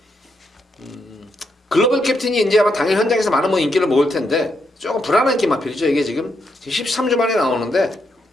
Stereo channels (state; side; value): normal; both; correlation 0.80